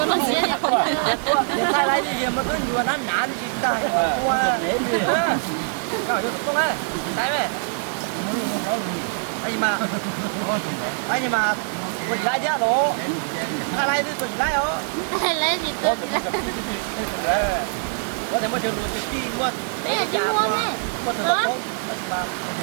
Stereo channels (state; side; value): silent; left; 63 dB below the other